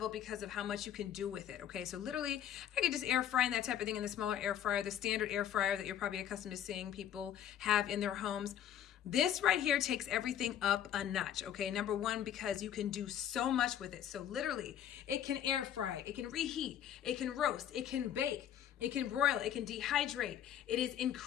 because of how much you can do with it, okay? So literally, I could just air fry and that type of thing in the smaller air fryer, the standard air fryer that you're probably accustomed to seeing people have in their homes. This right here takes everything up a notch, okay? Number one, because you can do so much with it. So literally, it can air fry, it can reheat, it can roast, it can bake, it can broil, it can dehydrate. It is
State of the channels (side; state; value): right; quieter; 10.1 dB